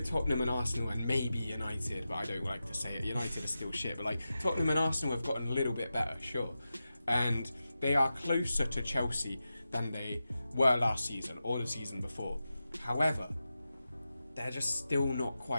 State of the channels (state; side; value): inverted; both; correlation -0.92